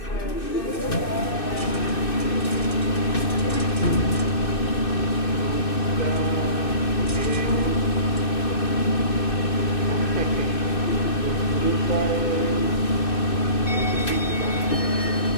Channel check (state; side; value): late; right; 2.6 ms